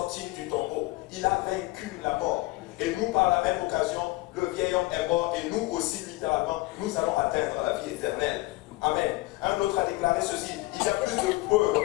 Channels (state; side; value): quieter; right; 20.6 dB